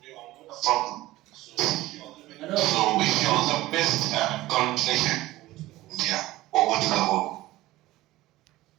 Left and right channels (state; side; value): quieter; left; 17.2 dB